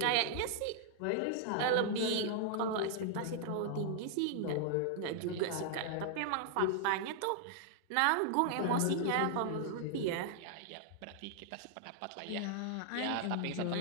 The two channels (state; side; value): different; both; correlation -0.01